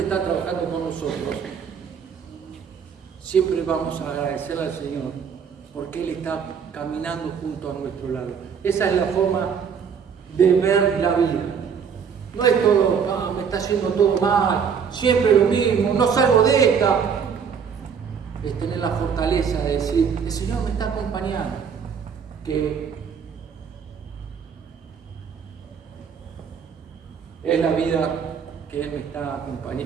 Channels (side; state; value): left; quieter; 6.8 dB